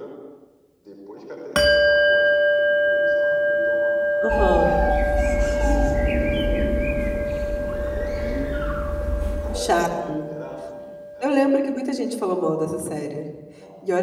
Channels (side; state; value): both; identical; correlation 1.00